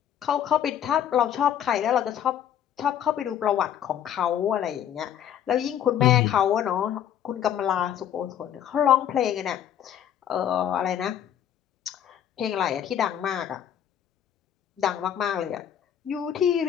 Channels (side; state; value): right; quieter; 9.9 dB